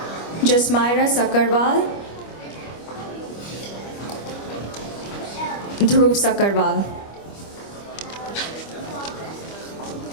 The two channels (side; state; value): right; late; 25 ms